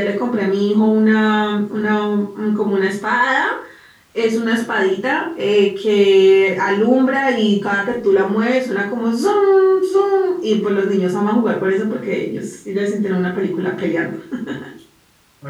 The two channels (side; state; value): both; identical; correlation 1.00